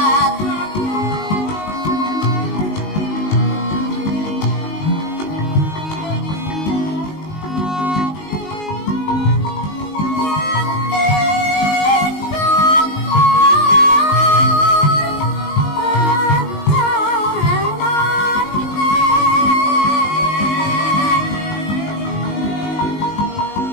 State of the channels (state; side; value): late; right; 19 ms